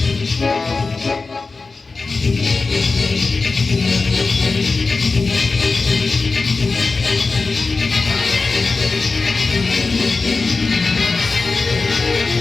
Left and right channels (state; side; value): quieter; right; 4.0 dB